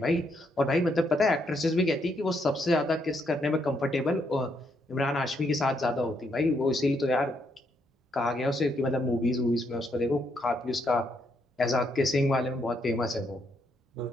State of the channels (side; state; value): both; normal; correlation 0.75